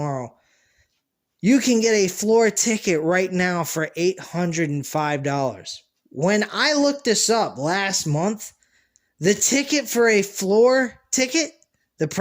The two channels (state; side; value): identical; both; correlation 1.00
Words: You can get a floor ticket right now for $805. When I looked this up last month, the ticket for a floor ticket, the